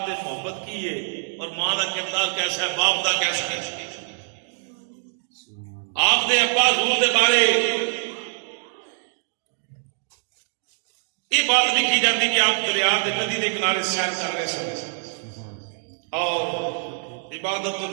تے محبت کی ہے اور ماں دا کردار کیسا ہے باپ دا کیسا ہے آپ دے ابا حضور دے بارے یہ بات لکھی جاتی کہ آپ دریا دے ندی دے کنارے سیر کر رہے سن اور عبادت و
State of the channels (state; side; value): silent; left; 62 dB below the other